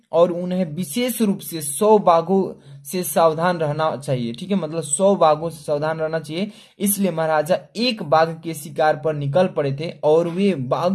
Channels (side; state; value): both; identical; correlation 1.00